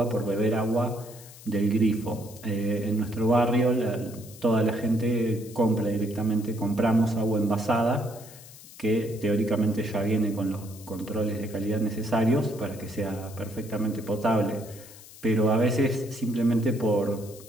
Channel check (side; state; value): left; noise; hiss, 19 dB below the sound